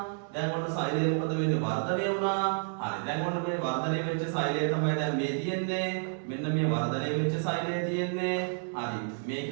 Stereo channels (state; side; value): silent; left; 58 dB below the other